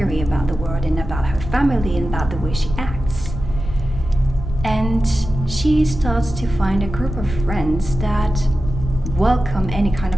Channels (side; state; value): left; noise; rumble, 8 dB below the sound